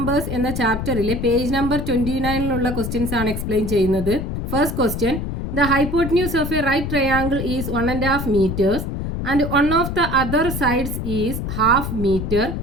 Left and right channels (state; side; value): noise; left; rumble, 4 dB below the sound